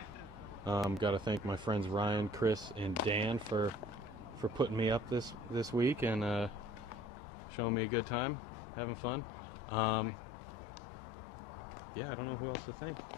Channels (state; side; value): drops out; right; at 7.1 s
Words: Got to thank my friends Ryan, Chris, and Dan for putting me up this week and showing me a good time, having fun. Yeah, I don't know who else to thank.